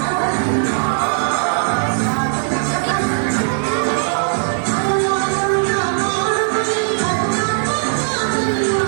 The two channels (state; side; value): silent; left; 56 dB below the other